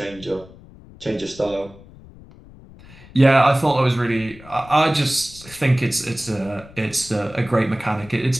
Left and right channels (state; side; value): noise; left; rumble, 21 dB below the sound